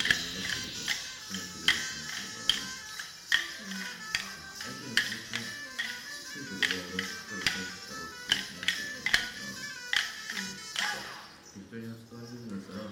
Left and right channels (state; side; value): identical; both; correlation 1.00